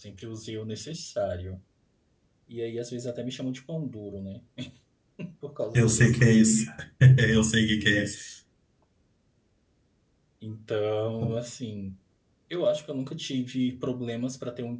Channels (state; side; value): identical; both; correlation 1.00